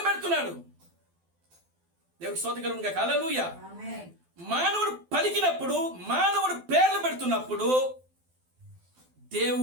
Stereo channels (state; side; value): late; left; 12 ms